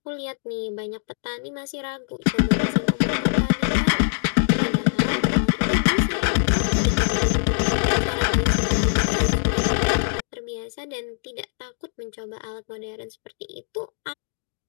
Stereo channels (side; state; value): right; silent; digital silence